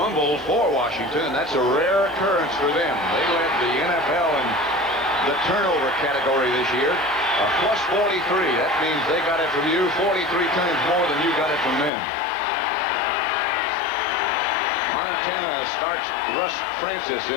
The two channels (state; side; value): drops out; right; at 11.9 s